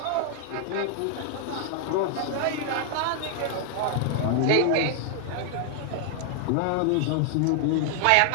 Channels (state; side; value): different; both; correlation 0.00